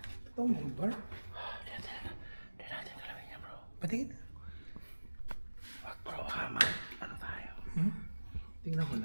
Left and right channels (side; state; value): both; inverted; correlation -1.00